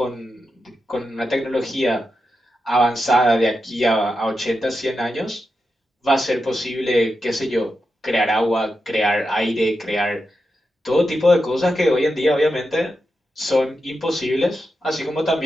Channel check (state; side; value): normal; both; correlation 0.88